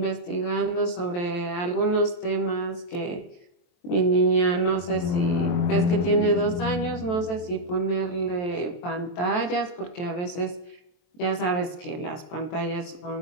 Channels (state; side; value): late; right; 23 ms